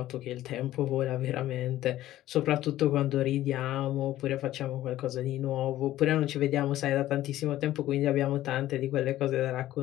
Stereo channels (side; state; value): right; quieter; 14.2 dB